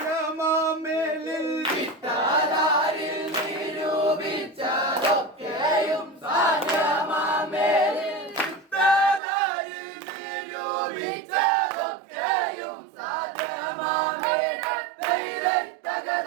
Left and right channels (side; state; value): left; drops out; at 9.2 s